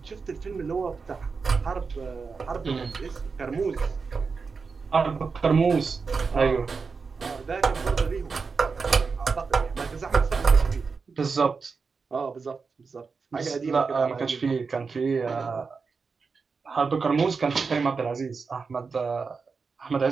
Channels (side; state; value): left; quieter; 4.9 dB